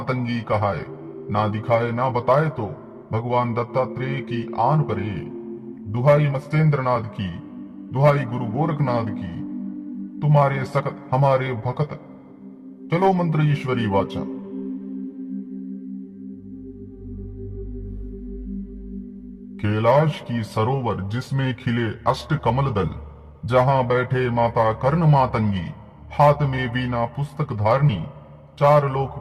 कहाए, ना दिखाए ना बताए तो भगवान दत्तात्रेय की आन परे। दुहाई मत्स्येंद्रनाथ की, दुहाई गुरु गोरखनाथ की, तुम्हारे सकत हमारे भकत, चलो मंत्र ईश्वरी वाचा। कैलाश की सरोवर जिसमें खिले अष्ट कमल दल, जहां बैठे माता कर्ण मातंगी, हाथ में वीणा पुस्तक धारणी, चार लोक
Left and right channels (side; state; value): both; identical; correlation 1.00